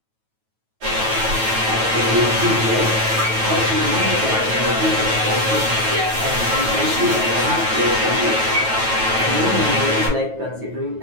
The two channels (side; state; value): left; late; 9.2 ms